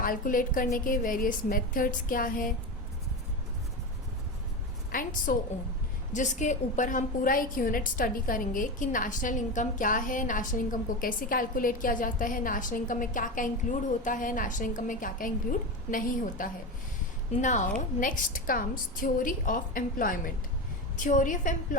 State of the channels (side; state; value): both; normal; correlation 0.20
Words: करने के वेरियस मेथड्स क्या हैं एंड सो ऑन, जिसके ऊपर हम पूरा एक यूनिट स्टडी करेंगे कि नेशनल इनकम क्या है, नेशनल इनकम को कैसे कैलकुलेट किया जाता है, नेशनल इनकम में क्या क्या इंक्लूड होता है, नेशनल इनकम में क्या क्या इंक्लूड नहीं होता है. Now next comes theory of employment. Theory of